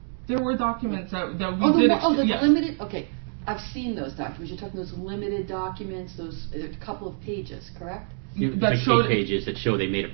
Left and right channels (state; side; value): silent; left; 61 dB below the other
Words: There were documents that we did. The limited. Okay, I've seen those documents. You're talking those limited documents, those a couple of pages, correct? That showed 8 pages that show they made